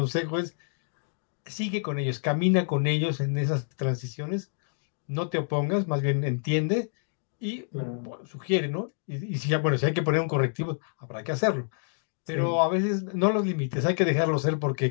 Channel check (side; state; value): right; silent; digital silence